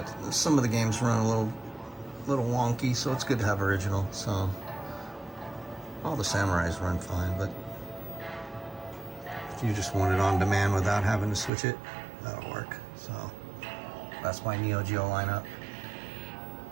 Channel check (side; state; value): left; drops out; at 11.5 s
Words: some of the games run a little wonky, so it's good to have original. So all the Samurais run fine, but if you just want it on demand without having to switch it, that'll work. So that's my Neo Geo lineup.